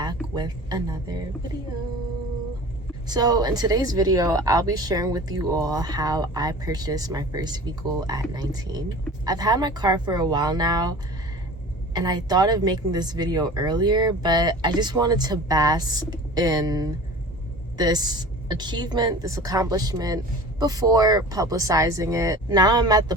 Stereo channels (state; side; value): normal; both; correlation 0.39